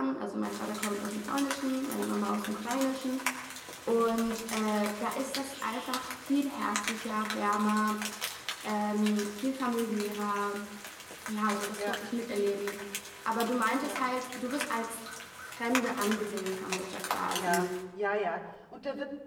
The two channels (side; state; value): both; identical; correlation 1.00